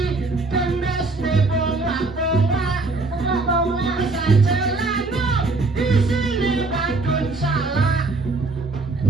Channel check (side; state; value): left; quieter; 3.4 dB